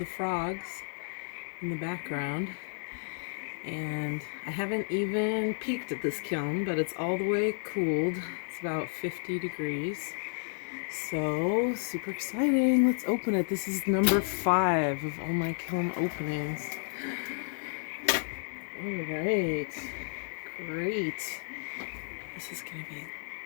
frogs in the background, and I haven't even peeked at this kiln, but it's all the way cooled. It's about 50 degrees, so super exciting. Let's open it. This is number 5 of all my kiln openings. All right, great. This is gonna be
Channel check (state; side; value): silent; right; digital silence